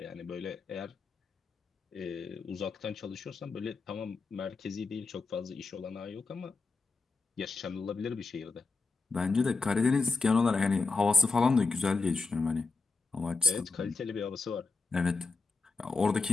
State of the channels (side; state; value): right; quieter; 4.0 dB